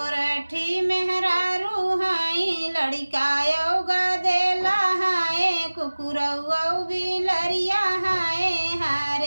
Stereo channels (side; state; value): both; inverted; correlation -1.00